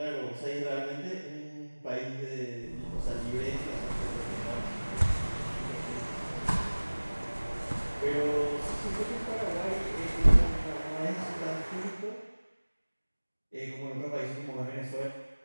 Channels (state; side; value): inverted; both; correlation -1.00